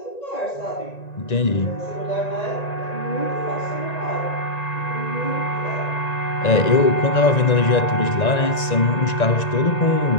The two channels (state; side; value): late; right; 1.9 ms